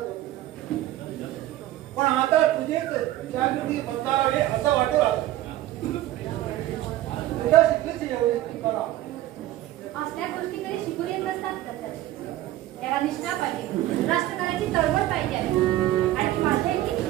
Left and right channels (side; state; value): left; quieter; 14.6 dB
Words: पण आता तुझेच जागृती बदलावे असं वाटू लागलं. तुझ्या शिकलीच एवढी कला. असल्या गोष्टी कधी शिकून येत नसतात दत्ताजी. त्याला निष्ठा पाहिजे, राष्ट्रकाराची तळमळ पाहिजे आहे आणि ती माझ्या इतकी